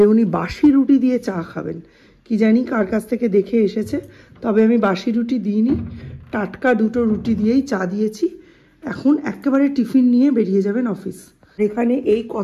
উনি বাসি রুটি দিয়ে চা খাবেন। কি জানি কার কাছ থেকে দেখে এসেছে, তবে আমি বাসি রুটি দিইনি, টাটকা 2টো রুটি দিয়েই চা দিয়েছি। এখন একেবারে টিফিন নিয়ে বেরিয়ে যাবেন অফিস। এখানে এই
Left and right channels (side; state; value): both; identical; correlation 1.00